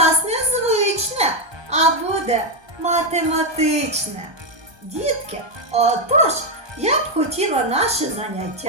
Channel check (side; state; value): left; late; 1.2 ms